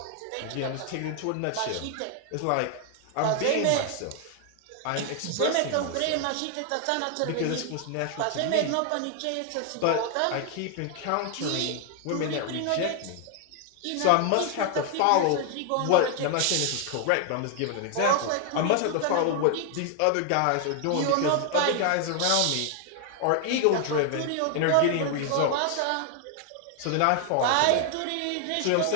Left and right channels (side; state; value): both; different; correlation 0.00